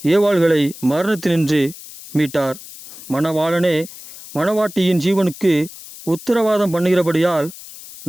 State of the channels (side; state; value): left; noise; hiss, 16 dB below the sound